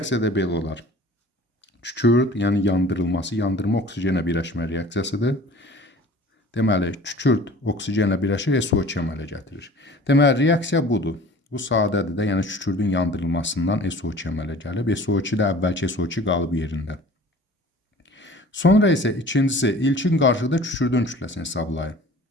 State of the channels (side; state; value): both; normal; correlation 0.45